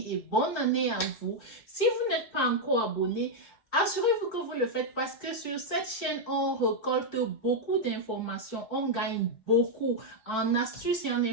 et bonne année à vous. Si vous n'êtes pas encore abonné, assurez-vous que vous le faites parce que sur cette chaîne, on récolte beaucoup d'informations. On gagne beaucoup en astuces et en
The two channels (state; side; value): late; right; 4.5 ms